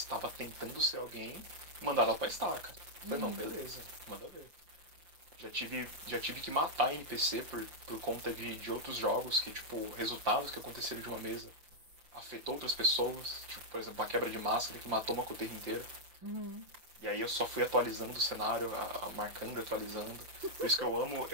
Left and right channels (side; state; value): left; late; 6.0 ms